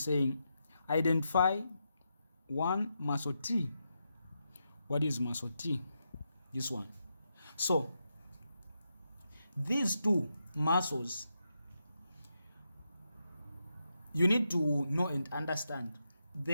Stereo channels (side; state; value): both; inverted; correlation -0.85